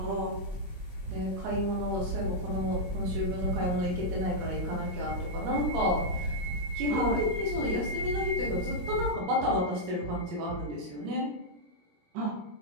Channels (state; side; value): late; left; 17 ms